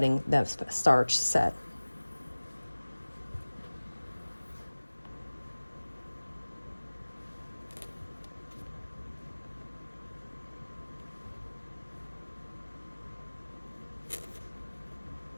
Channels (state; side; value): inverted; both; correlation -1.00